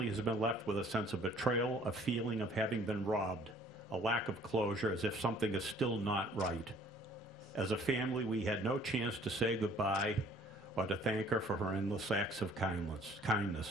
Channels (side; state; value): both; normal; correlation 0.56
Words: has been left with a sense of betrayal, a feeling of having been robbed, a lack of closure, as if something is still not right. As a family, we had no chance to say goodbye or to thank her for her endless acts of